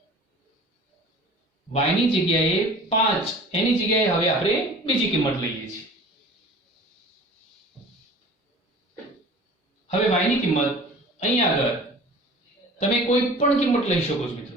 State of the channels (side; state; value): both; normal; correlation 0.43